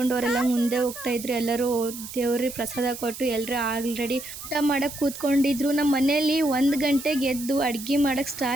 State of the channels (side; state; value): right; noise; hiss, 11 dB below the sound